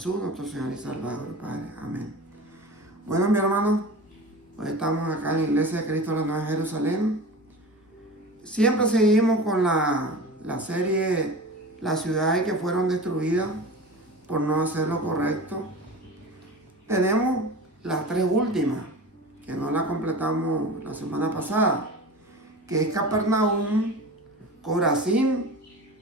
nuestro Señor y Salvador, Padre. Amén. Bueno, mi hermano, hoy estamos acá en la Iglesia de Cristo de la Nueva Jerusalén. Siempre seguimos con la serie Las ciudades que fueron destruidas por no hacer lo correcto. Tenemos las tres últimas, que no las completamos la semana pasada, que es Capernaum, Corazín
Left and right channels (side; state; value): both; normal; correlation 0.33